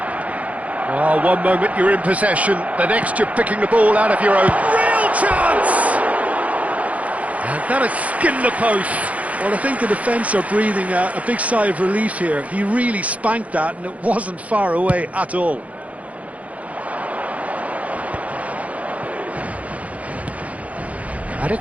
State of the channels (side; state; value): left; late; 0.067 ms